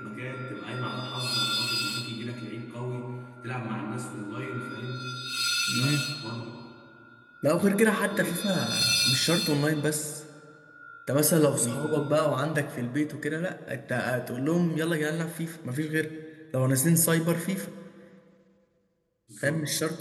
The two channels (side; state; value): both; identical; correlation 1.00